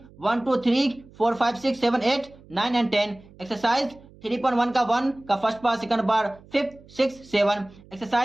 1 2 3 4 5 6 7 8 9 and 10। एक्सरसाइज 3.1 का 1 का first part, second part, 5 6 7।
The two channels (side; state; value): right; noise; hum, 24 dB below the sound